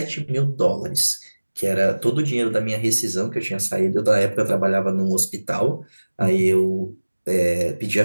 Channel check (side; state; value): both; inverted; correlation -1.00